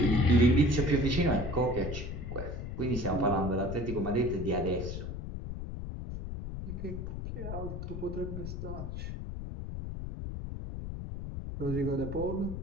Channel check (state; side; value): noise; left; rumble, 6 dB below the sound